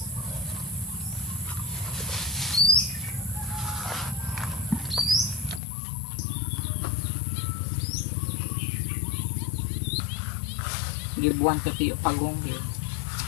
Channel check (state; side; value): drops out; right; at 5.6 s